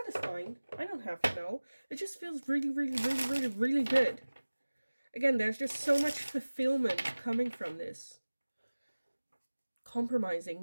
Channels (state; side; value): inverted; both; correlation -1.00